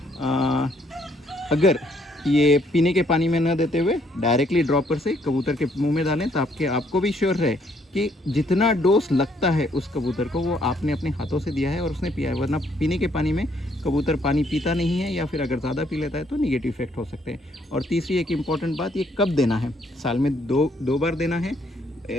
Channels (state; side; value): normal; both; correlation 0.68